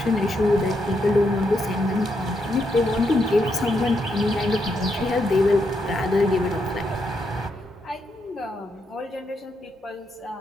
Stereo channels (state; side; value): normal; both; correlation 0.80